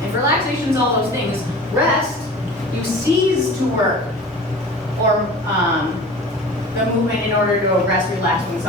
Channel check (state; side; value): normal; both; correlation 0.39